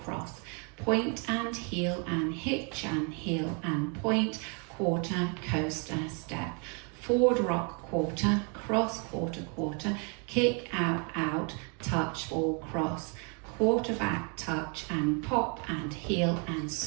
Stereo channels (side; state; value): left; quieter; 36.7 dB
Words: point and heel and hitch and heel and point, quarter, coaster, step, forward rock quarter, cross quarter quarter, kick out out, touch ball cross, quarter back touch and pop and heel and